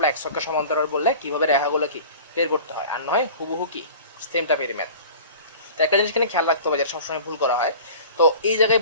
x অক্ষ সমান্তরাল বললে কিভাবে রেখাগুলো কি বের করতে হয়, আর নয় হুবহু কি সেম টাইপের ম্যাথ। তো একটা জিনিস এখানে খেয়াল রাখতে হবে যেটা সবসময় ভুল করা হয়, তো এই জায়গায়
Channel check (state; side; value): inverted; both; correlation -0.41